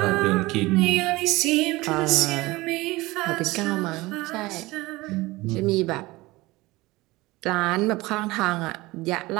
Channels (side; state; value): left; quieter; 20.6 dB